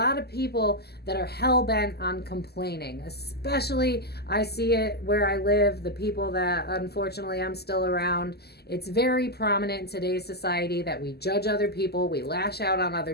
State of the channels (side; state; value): right; late; 0.46 ms